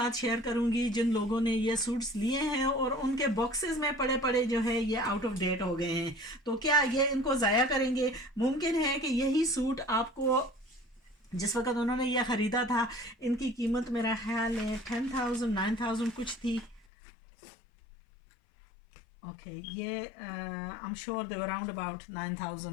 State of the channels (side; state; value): right; drops out; at 16.9 s